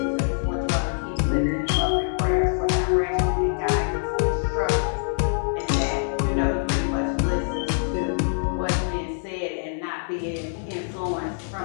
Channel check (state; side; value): silent; right; digital silence